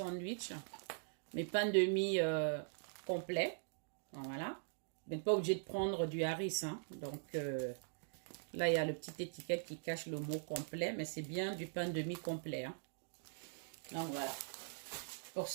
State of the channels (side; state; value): left; silent; digital silence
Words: mes pains de mie complets. Voilà. Vous n'êtes pas obligé de prendre du harissa. Hein. Donc là, il y a le petit étiquette qui cache le mot complet, mais c'est bien du pain de mie complet. Hein. Donc voilà. Pour